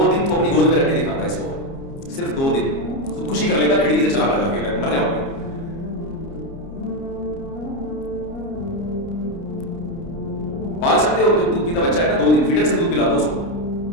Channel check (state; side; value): late; right; 30 ms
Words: دن تو اپنی گود میں رکھ کے دکھاتا ہے اس کو, صرف 2 دن خودکشی کر لیتا, کھڑکی سے چلا لگا کے مر جاؤں گا. پال سکتے ہو, تو دودھ پیتا بچہ ہے نا, 2 دن فیڈر سے دودھ پلا دو اس کو,